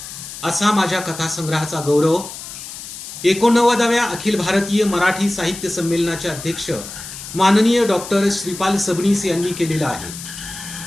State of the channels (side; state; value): left; noise; hiss, 11 dB below the sound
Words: असा माझ्या कथा संग्रहाचा गौरव 89व्या अखिल भारतीय मराठी साहित्य संमेलनाचे अध्यक्ष माननीय डॉक्टर श्रीपाल सबनीस यांनी केलेला आहे.